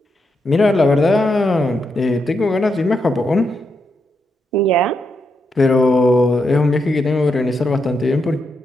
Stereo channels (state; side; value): normal; both; correlation 0.83